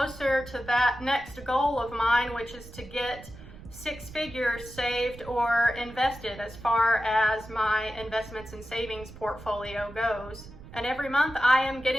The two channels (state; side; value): noise; right; rumble, 17 dB below the sound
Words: to that next goal of mine, which is to get 6 figures saved or invested as far as my investments and savings portfolio goes. And every month I am